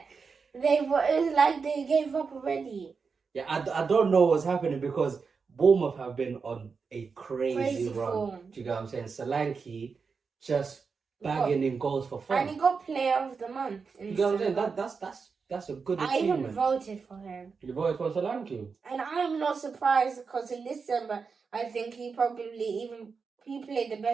It was like they gave up already. Yeah, I don't know what's happening because Bournemouth have been on a crazy run. form. Do you get what I'm saying? Solanke just bagging in goals for fun. And he got Player of the Month. You get what I'm saying? That's a good achievement. I even voted for him. You voted for Solanke? And I am not surprised because in December, I think he played the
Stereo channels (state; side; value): quieter; left; 5.2 dB